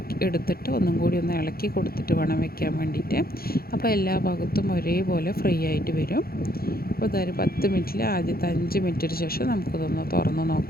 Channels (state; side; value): late; right; 0.44 ms